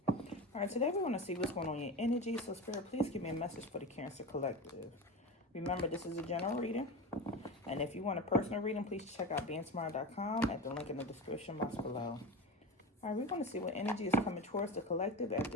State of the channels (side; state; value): both; normal; correlation 0.26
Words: Alright, today we're going to see what's going on in your energy. So Spirit, please give me a message for the Cancer Collective. Remember, this is a general reading. And if you want a personal reading, please check out BeingTymara.com at the link in the description box below. Alright, we're going to see what energy is coming towards the collective at